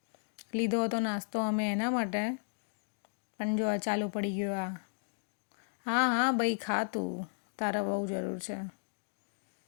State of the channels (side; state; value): right; silent; digital silence